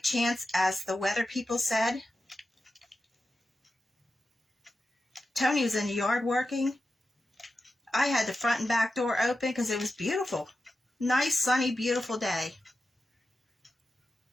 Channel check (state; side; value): normal; both; correlation 0.91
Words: chance, as the weather people said. Tony was in the yard working. I had the front and back door open because it was beautiful. Nice, sunny, beautiful day.